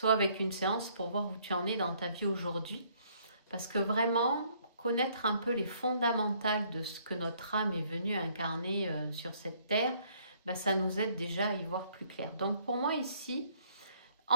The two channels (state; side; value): inverted; both; correlation -0.64